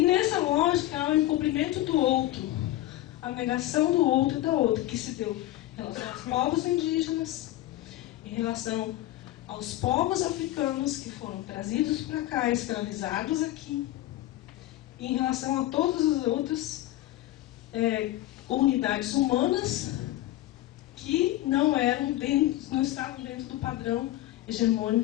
nessa lógica há o encobrimento do outro, a negação do outro e da outra, que se deu em relação aos povos indígenas, em relação aos povos africanos que foram trazidos para cá, escravizados aqui, e em relação a todas as outras comunidades humanas que não estavam dentro do padrão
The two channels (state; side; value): quieter; right; 15.5 dB